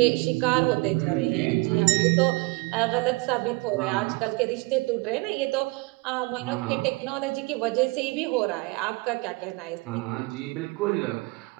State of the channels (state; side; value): quieter; left; 26.5 dB